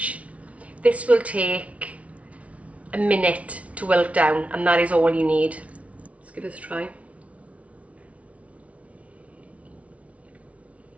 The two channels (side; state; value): left; late; 0.065 ms